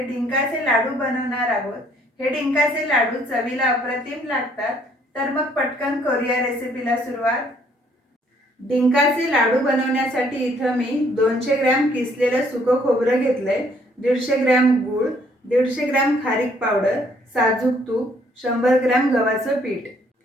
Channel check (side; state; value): both; normal; correlation 0.64